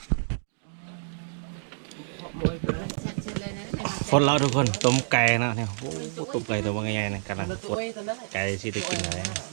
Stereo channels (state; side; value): silent; left; digital silence